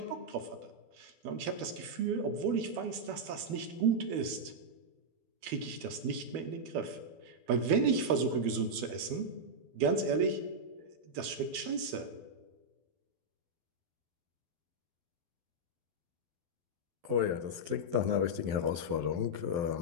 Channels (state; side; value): late; left; 12 ms